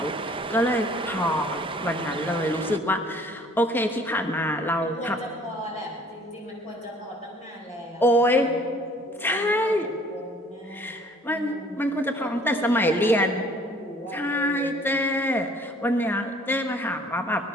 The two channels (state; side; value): normal; both; correlation 0.55